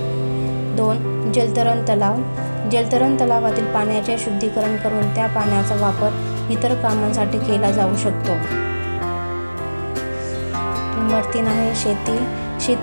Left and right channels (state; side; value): inverted; both; correlation -1.00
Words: 2 जलतरण तलाव. जलतरण तलावातील पाण्याचे शुद्धीकरण करून त्या पाण्याचा वापर इतर कामांसाठी केला जाऊ शकतो. नंबर 3 आहे शेती.